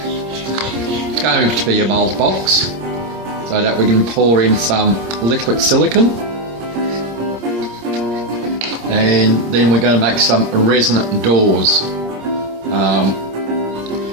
it's going to be a mould box, so that we can pour in some liquid silicone, and then we're going to make some resonant doors.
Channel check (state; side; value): late; left; 26 ms